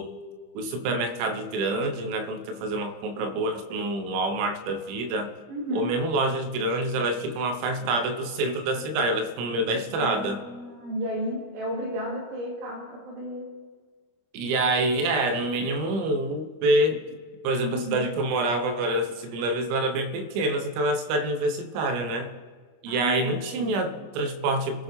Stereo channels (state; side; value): late; left; 25 ms